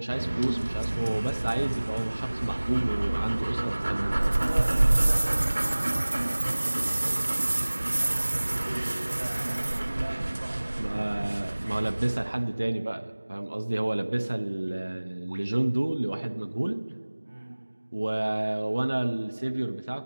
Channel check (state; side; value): inverted; both; correlation -1.00